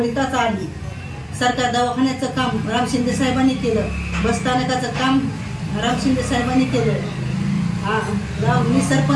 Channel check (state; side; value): identical; both; correlation 1.00